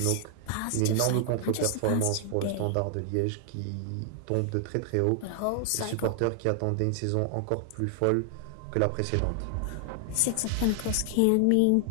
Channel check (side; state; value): both; different; correlation 0.00